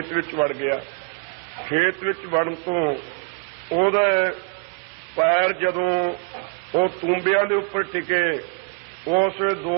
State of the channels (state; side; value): quieter; left; 35.5 dB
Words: ਵਿੱਚ ਵੜ ਗਿਆ। ਖੇਤ ਵਿੱਚ ਵੜਨ ਤੋਂ ਉਹਦਾ ਪੈਰ ਜਦੋਂ ਉਹ ਤੂੰਬਿਆਂ ਦੇ ਉੱਪਰ ਟਿਕੇ, ਉਸ ਵੇਲੇ